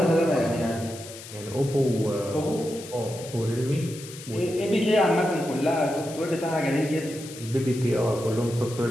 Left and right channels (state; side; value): noise; left; hiss, 14 dB below the sound